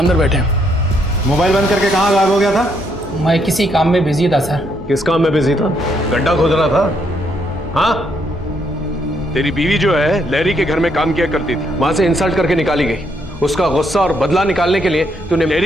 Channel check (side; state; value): both; normal; correlation 0.74